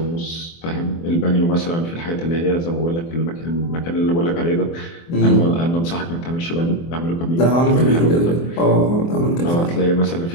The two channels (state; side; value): late; right; 24 ms